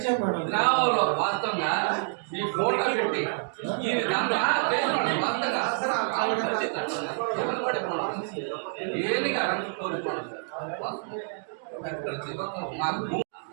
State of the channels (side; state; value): left; silent; digital silence